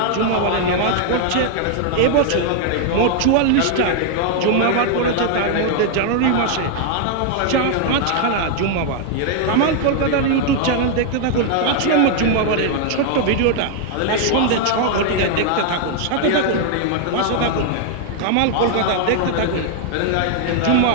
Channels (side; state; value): both; different; correlation 0.00